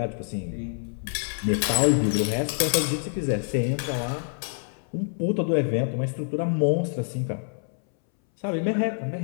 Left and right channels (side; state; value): right; silent; 61 dB below the other